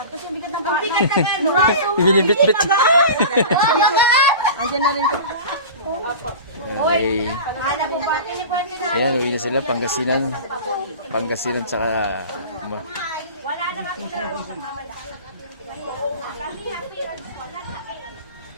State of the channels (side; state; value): both; inverted; correlation -0.34